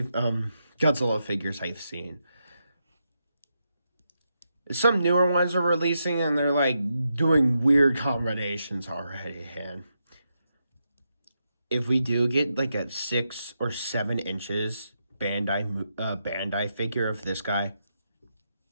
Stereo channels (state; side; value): inverted; both; correlation -0.84